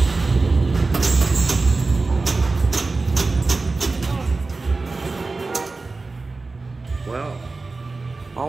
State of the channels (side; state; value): left; quieter; 3.7 dB